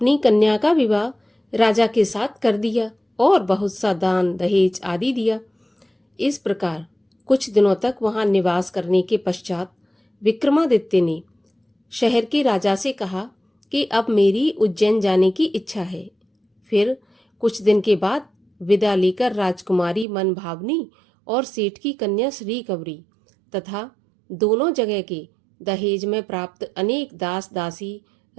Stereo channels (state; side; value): drops out; left; at 20.1 s